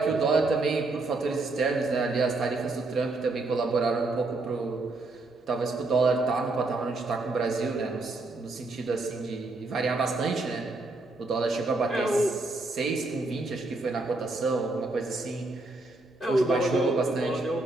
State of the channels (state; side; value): quieter; left; 3.1 dB